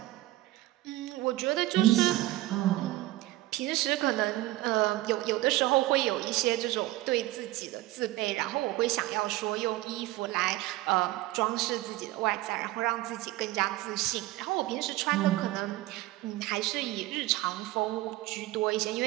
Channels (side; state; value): left; quieter; 17.6 dB